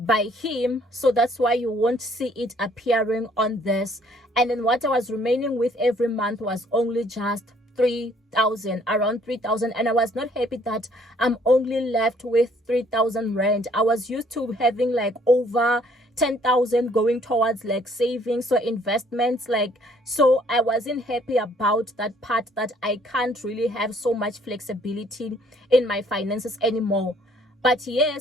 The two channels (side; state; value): both; normal; correlation 0.62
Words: him. So that's why you won't see it appearing on this. And then what I was remaining with every month was only just 3,000, around 3,000. And I was not happy that I'm only left with 3,000 rand. I was used to having like over 10,000 going towards like savings, so investments, like, so I wasn't happy about that part, that I can't really have so much flexibility in my finances anymore. But